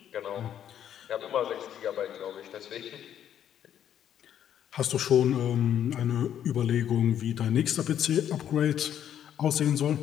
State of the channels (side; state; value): right; quieter; 10.0 dB